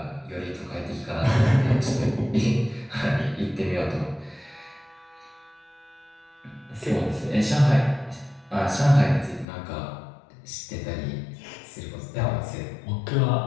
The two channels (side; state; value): right; drops out; at 9.5 s